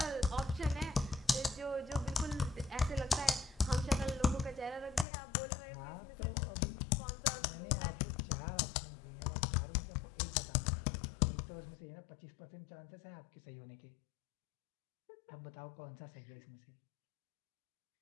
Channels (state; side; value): drops out; right; at 5.1 s